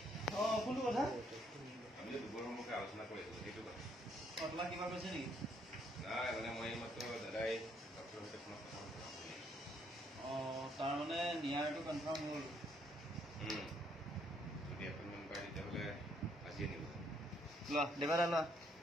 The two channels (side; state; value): both; normal; correlation 0.70